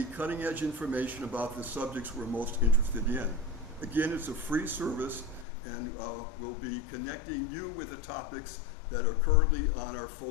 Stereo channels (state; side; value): drops out; right; at 5.5 s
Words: cutting edge information about the subjects we're most interested in. Again, it's a free service, and we'll be connecting you with the topics that are currently on our